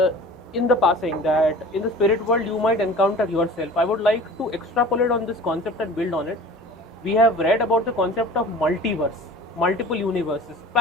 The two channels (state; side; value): normal; both; correlation 0.42